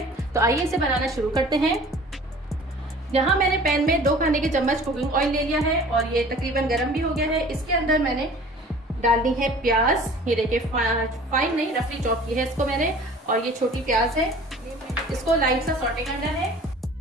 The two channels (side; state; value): both; normal; correlation 0.46